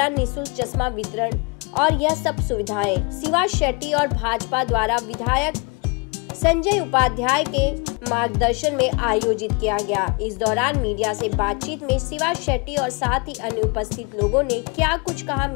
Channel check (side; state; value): right; quieter; 31.1 dB